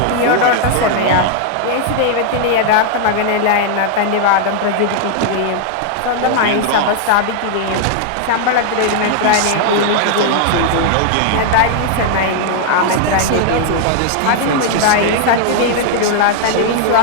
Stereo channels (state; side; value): different; both; correlation 0.00